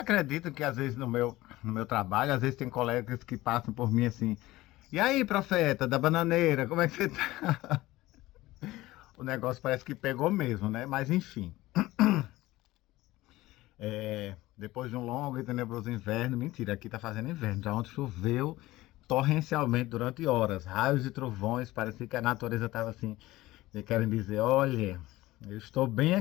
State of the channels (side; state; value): right; quieter; 17.9 dB